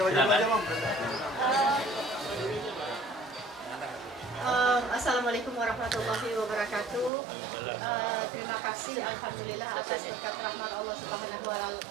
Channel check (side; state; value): left; drops out; at 7.1 s